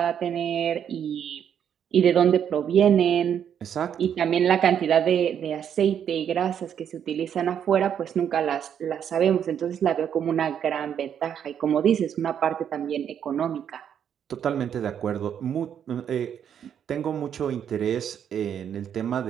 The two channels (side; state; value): left; quieter; 8.7 dB